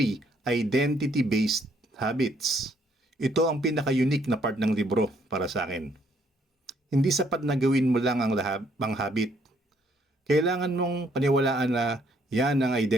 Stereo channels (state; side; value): normal; both; correlation 0.68